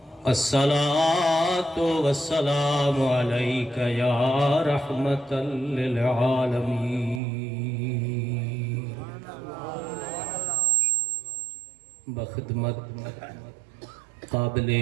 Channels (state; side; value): drops out; left; at 7.2 s